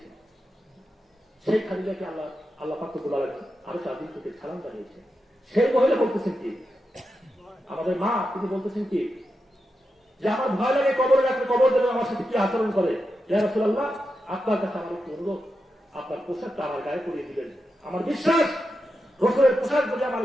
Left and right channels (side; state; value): both; normal; correlation 0.88